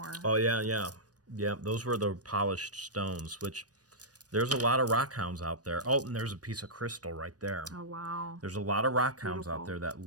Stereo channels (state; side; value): late; left; 0.68 ms